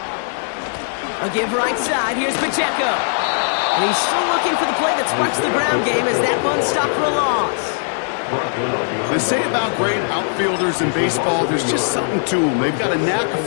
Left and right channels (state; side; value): silent; right; digital silence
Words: A give right side. Here's Pacheco. And he's still looking for the play that sparks the ground game as that one stopped for a loss. They say about great outfielders in baseball, there's just something to them. They've got a knack, a